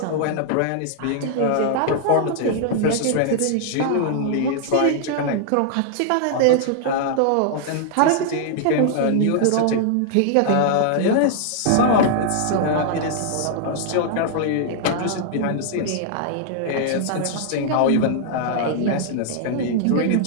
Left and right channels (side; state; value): both; different; correlation -0.01